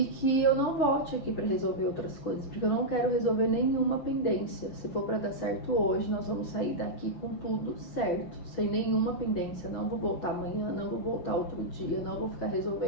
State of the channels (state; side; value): late; right; 6.3 ms